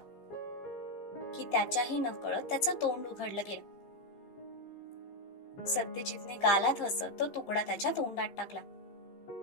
की त्याच्याही नकळत त्याचं तोंड उघडलं गेलं. सत्यजितने गालात हसत तो तुकडा त्याच्या तोंडात टाकला.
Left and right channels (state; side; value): late; right; 15 ms